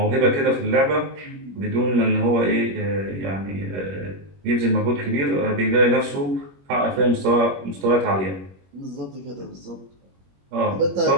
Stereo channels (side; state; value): left; late; 21 ms